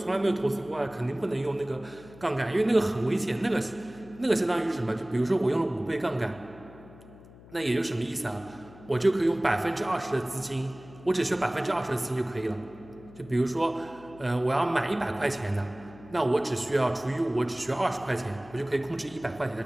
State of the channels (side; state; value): left; noise; hum, 21 dB below the sound